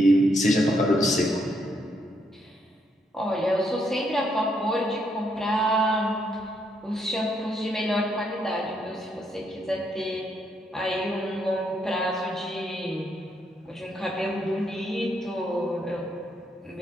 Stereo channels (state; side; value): normal; both; correlation 0.75